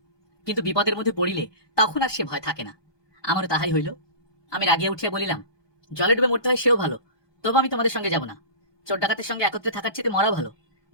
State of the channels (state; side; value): late; right; 1.2 ms